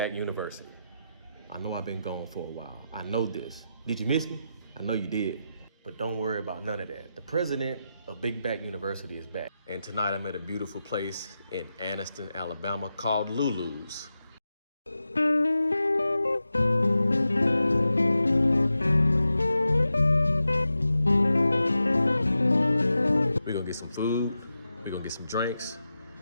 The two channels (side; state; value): both; inverted; correlation -0.90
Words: University. I know I've been gone for a while. I know this. Did you miss me? I know you did. But don't worry about none of that. The president of Big Back University is back. And tonight I'm at a beautiful place in Anniston, Alabama called Lulu's. We're gonna get some food, we're gonna get some drinks,